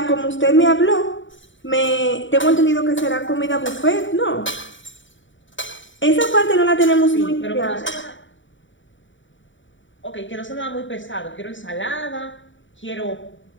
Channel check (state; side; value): late; right; 0.55 ms